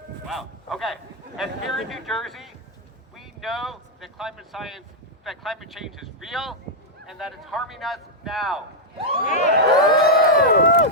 Wow. Okay. And here in New Jersey, we know that climate change is real and that it's harming us now.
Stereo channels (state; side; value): normal; both; correlation -0.04